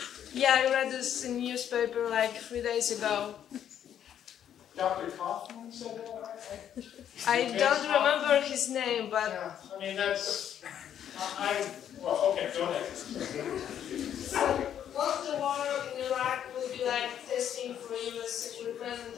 Yeah, I read this in newspaper like 3 days ago. Dr. Kaufman said that? I don't remember his name, but... Yeah, I mean, that's... well, okay, go ahead. Won't the war in Iraq will be like testing for US equipment and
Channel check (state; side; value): quieter; right; 9.8 dB